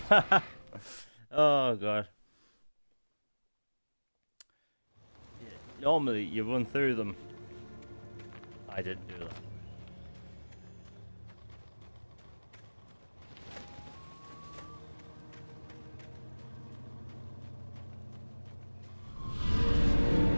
Oh god. Yeah, normally you run through them. I didn't do that.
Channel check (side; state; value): both; inverted; correlation -1.00